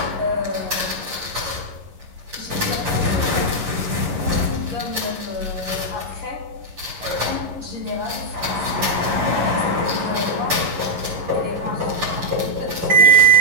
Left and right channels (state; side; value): late; left; 11 ms